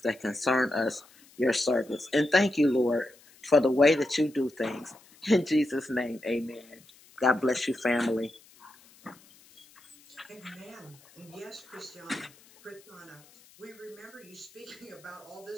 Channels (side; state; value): left; noise; hiss, 26 dB below the sound